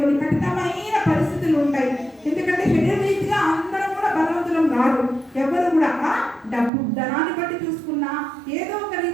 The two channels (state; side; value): drops out; left; at 6.7 s